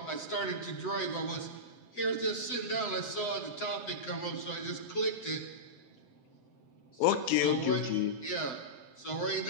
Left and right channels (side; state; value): right; late; 7.8 ms